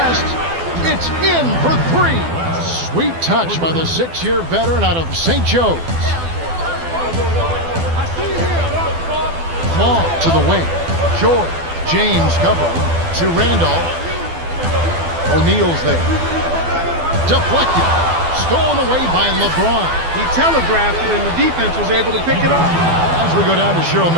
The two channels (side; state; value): left; late; 12 ms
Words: It's in for three. Sweet touch by the 6-year veteran out of St. Joe's. Ball to the wing. George. James covering to Randolph. O'Neal's there. Deflected. Stolen away by LeBron. He telegraphed it, and the defense was able to pick it up. As we go down to Cheryl